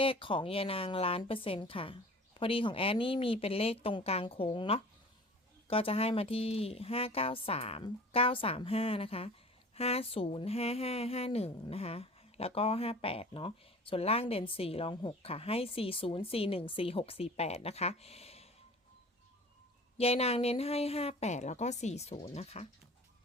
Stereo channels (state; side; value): normal; both; correlation 0.43